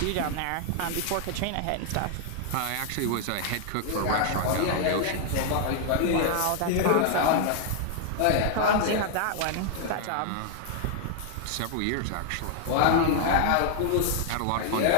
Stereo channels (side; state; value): both; different; correlation -0.01